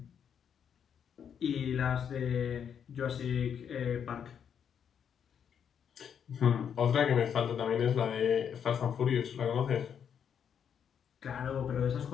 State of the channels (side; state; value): right; quieter; 8.0 dB